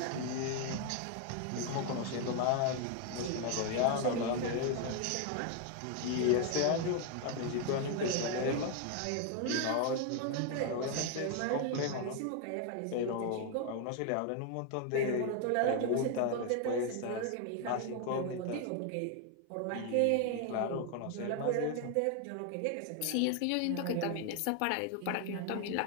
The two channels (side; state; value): both; different; correlation 0.01